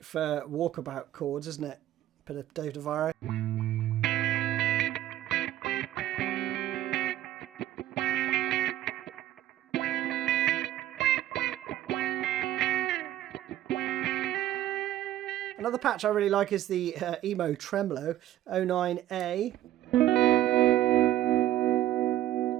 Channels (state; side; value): quieter; left; 13.4 dB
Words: for walkabout chords, isn't it? Bit of Dave DeVries. Another patch I really like is the Emo Tremolo 09A.